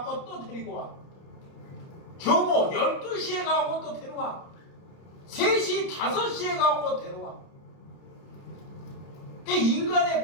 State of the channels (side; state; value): right; late; 30 ms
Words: 또 데리고 와. 정오 12시에 가고 또 데려와. 3시, 5시에 가고 데려와. 그